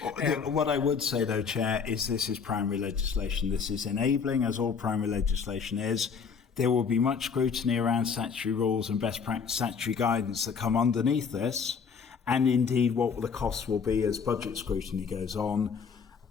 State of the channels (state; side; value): quieter; right; 6.0 dB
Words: What I would say, though, Chair, is this is primary legislation. This is enabling, as all primary legislation is. There will be much scrutiny around statutory rules and best practice statutory guidance that come underneath this, and indeed what the costs will be as budget scrutiny goes on.